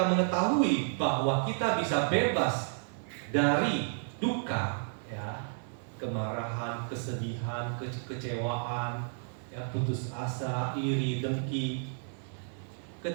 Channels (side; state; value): left; silent; digital silence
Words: mengetahui bahwa kita bisa bebas dari duka, ya, kemarahan, kesedihan, kecewaan, ya, putus asa, iri, dengki.